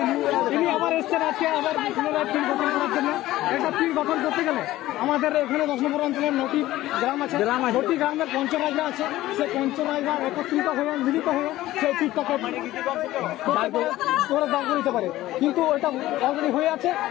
তিনি আবার এসছেন আজকে আবার পুনরায় ফিল্ড গঠন করার জন্য। একটা ফিল্ড গঠন করতে গেলে আমাদের এখানে 10 নম্বর অঞ্চলের 9টি গ্রাম আছে, 9টি গ্রামের পঞ্চরাজরা আছে। সেই পঞ্চরাজরা একত্রিত হয়ে মিলিত হয়ে সেই ফিল্ডটাকে করে দাঁড় দিতে পারে, কিন্তু ওইটা অলরেডি হয়ে আছে।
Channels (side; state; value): right; quieter; 15.8 dB